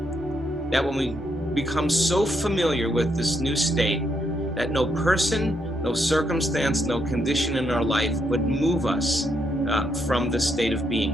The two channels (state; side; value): normal; both; correlation 0.77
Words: that when we become so familiar with this new state, that no person, no circumstance, no condition in our life would move us from the state of